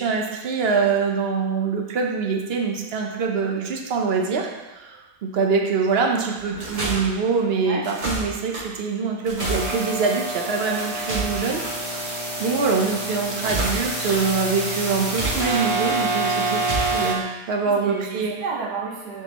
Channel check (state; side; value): quieter; left; 4.0 dB